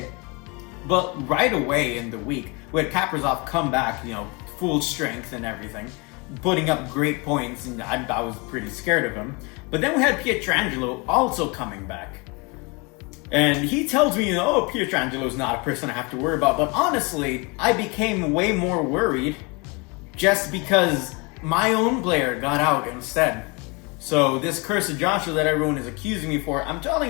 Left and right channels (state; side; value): quieter; right; 29.4 dB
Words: But right away in the week, we had Kaprizov come back, full strength and everything, putting up great points, and I was pretty scared of him. But then we had Pietrangelo also coming back. And he tells me, Pietrangelo's not a person I have to worry about. But honestly, I became way more worried just because my own player got out instead. So this Curse of Joshua that everyone is accusing me for, I'm